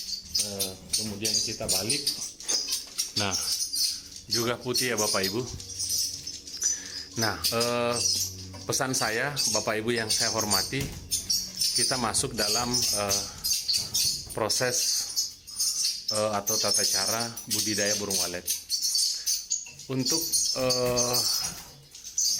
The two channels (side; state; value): both; identical; correlation 1.00